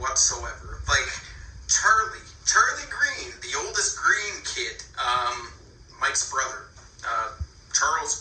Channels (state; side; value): identical; both; correlation 1.00